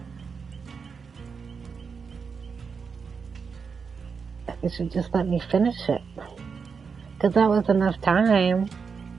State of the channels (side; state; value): left; quieter; 5.6 dB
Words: You should just let me finish it. Because that was enough time.